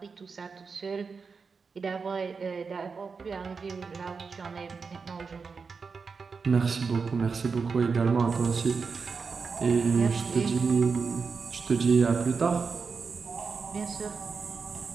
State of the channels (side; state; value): left; quieter; 5.1 dB